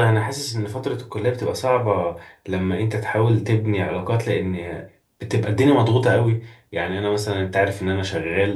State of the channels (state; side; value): identical; both; correlation 1.00